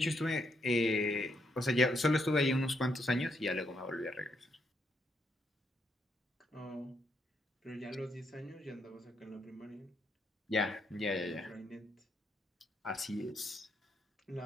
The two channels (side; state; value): both; normal; correlation 0.77